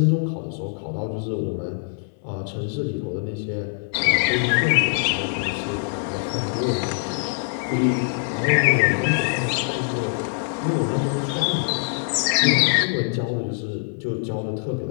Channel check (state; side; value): silent; right; 62 dB below the other